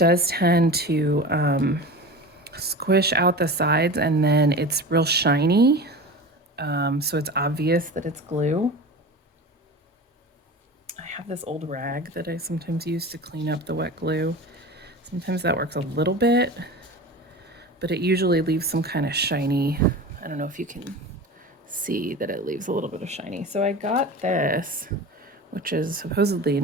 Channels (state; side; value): normal; both; correlation 0.32